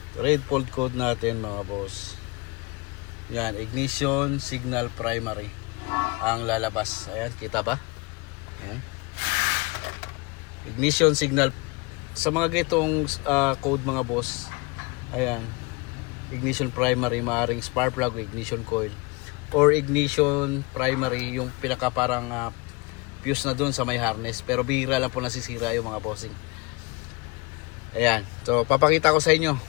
Red fault code natin mga boss. Yan, ignition signal primary ang lalabas. Ayan, kita ba? Ayan. Ignition signal. Sa mga gitong code mga boss, Ayan. Ignition primary, maaaring spark plug o ignition coil. Or ignition primary, yung pinaka parang fuse na dun sa may harness. Pero bihira lang po nasisira yung mga bossing. Ayan. So, papakita ko sa inyo.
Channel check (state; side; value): quieter; right; 26.5 dB